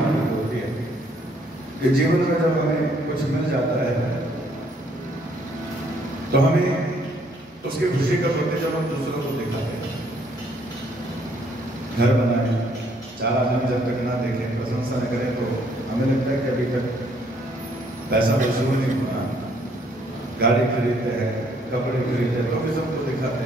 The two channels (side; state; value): both; normal; correlation 0.66